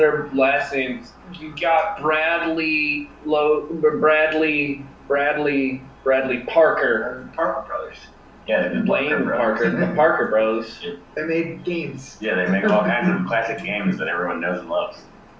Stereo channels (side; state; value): both; identical; correlation 1.00